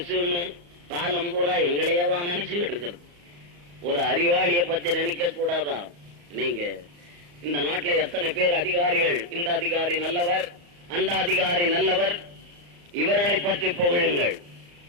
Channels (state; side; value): late; left; 34 ms